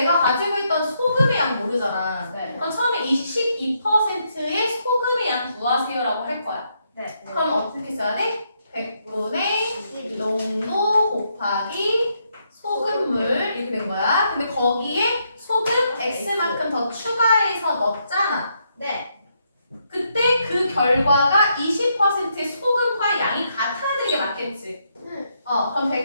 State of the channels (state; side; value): inverted; both; correlation -0.77